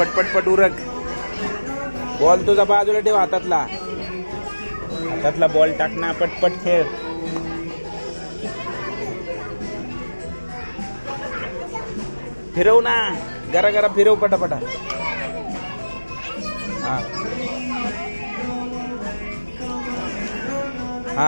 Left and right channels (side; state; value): both; inverted; correlation -1.00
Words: पट पट उरक. बॉल तुझा बाजूला ठेव हातातला. हातातला बॉल टाक ना. पटपट खेळ. फिरव ना. गरा गरा फिरव पटापटा. हा